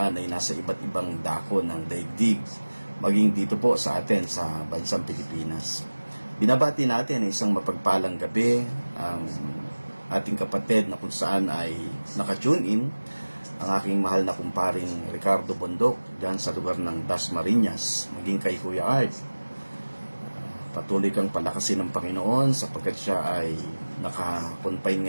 ay nasa iba't ibang dako ng daigdig, maging dito po sa atin sa bansang Pilipinas. Binabati natin ay isang mapagpalang gabi ang ating kapatid na kung saan ay nakatune in, ang aking mahal na kumparing Ricardo Bondok dyan sa lugar ng Dasmariñas, maging kay Kuya Art. Patuloy kang palakasin ng Panginoon sapagkat siya ay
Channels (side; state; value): both; inverted; correlation -1.00